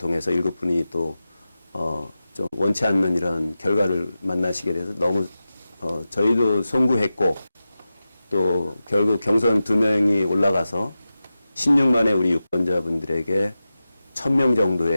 7분이 또 좀 원치 않는 이런 결과를 만나시게 돼서 너무 저희도 송구했고 또 결국 경선 2명이 올라가서 16만의 우리 유권자분들에게 1000명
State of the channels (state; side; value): inverted; both; correlation -0.93